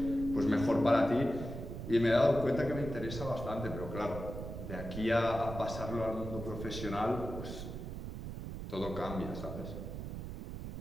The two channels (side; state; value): right; noise; rumble, 7 dB below the sound